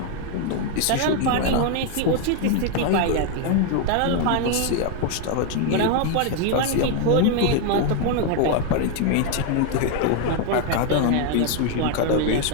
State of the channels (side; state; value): both; different; correlation 0.01